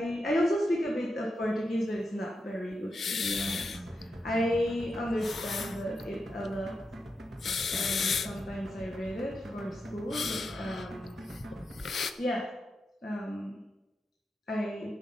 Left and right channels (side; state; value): both; normal; correlation 0.87